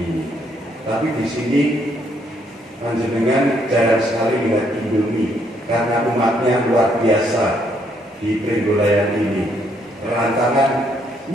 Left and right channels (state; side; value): normal; both; correlation 0.71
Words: Tapi di sini panjenengan jarang sekali melihat Indomie karena umatnya luar biasa di Pringgolayan ini. Rantangan